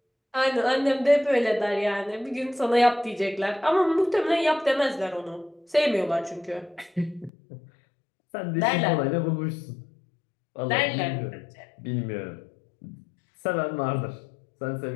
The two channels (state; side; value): drops out; right; at 7.3 s